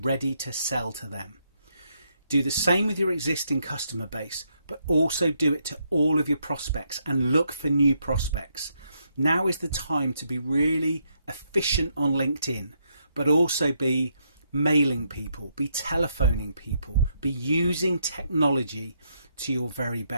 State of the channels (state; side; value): inverted; both; correlation -0.77